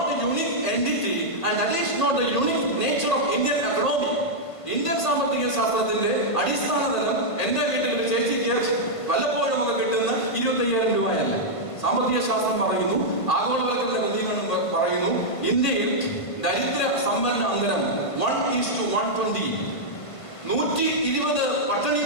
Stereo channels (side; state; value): right; late; 1.5 ms